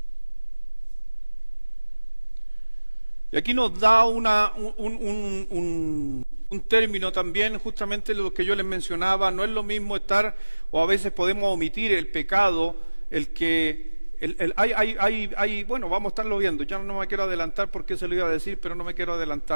Y aquí nos da un término también, justamente lo que yo les mencionaba, no es lo mismo estar, o a veces podemos omitir el pecado, bueno, vamos a estarlo viendo, ya no me quiero adelantar porque se lo iba a decir, pero no me quiero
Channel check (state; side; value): inverted; both; correlation -1.00